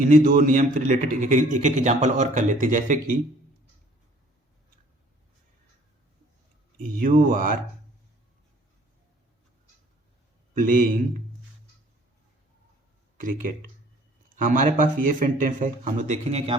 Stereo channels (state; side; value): normal; both; correlation 0.55